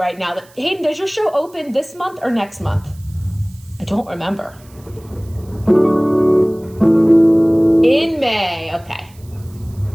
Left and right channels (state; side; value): noise; right; hiss, 27 dB below the sound